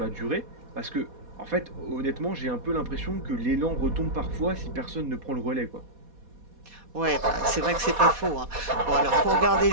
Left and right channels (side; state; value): left; late; 4.2 ms